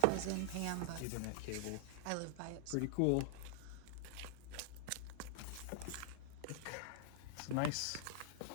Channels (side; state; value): both; different; correlation 0.00